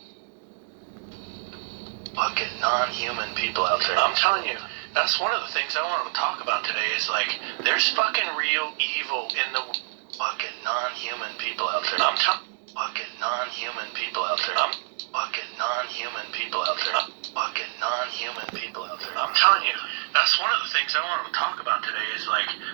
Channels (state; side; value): silent; left; digital silence